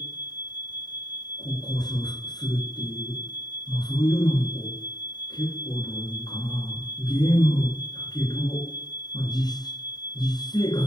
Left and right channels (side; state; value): right; late; 0.20 ms